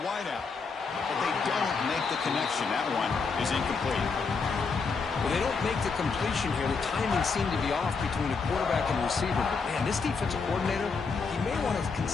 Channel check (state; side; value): quieter; right; 4.9 dB